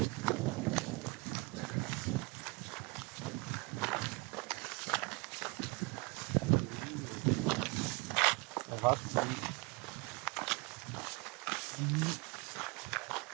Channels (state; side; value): quieter; left; 28.2 dB